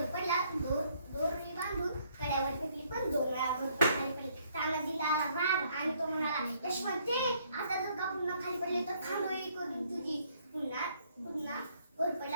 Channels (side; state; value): both; inverted; correlation -0.67